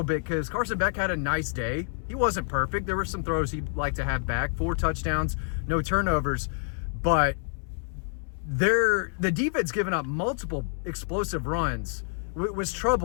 bit because Carson Beck had a nice day. He wasn't perfect. There were some throws he'd like to have back. 4 touchdowns, no turnovers. But the defense giving up multiple explosive runs was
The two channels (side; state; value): right; silent; 60 dB below the other